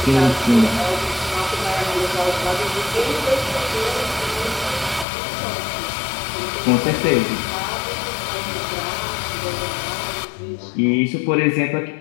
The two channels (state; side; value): drops out; right; at 5.1 s